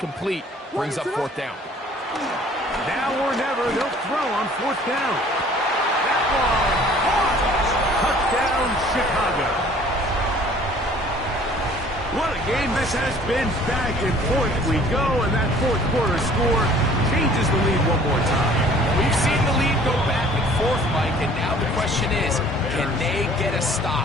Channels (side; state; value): both; normal; correlation 0.53